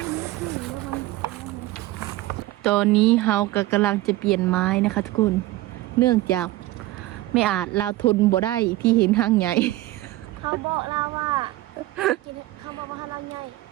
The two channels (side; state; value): left; quieter; 17.2 dB